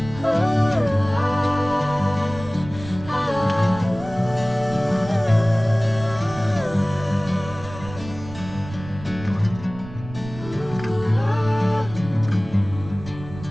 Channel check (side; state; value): right; noise; rumble, 14 dB below the sound